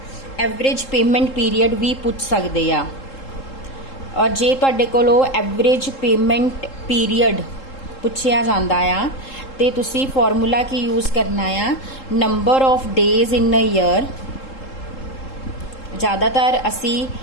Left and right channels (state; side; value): late; right; 3.7 ms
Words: एवरेज पेमेंट पीरियड भी पूछ सकते आ। और जे तुहाडे कोलों एवरेज पेमेंट पीरियड पूछया जांदा आ ते तुसी फॉर्मूला की यूज़ करना आ number of days in a year. ज़्यादातर असी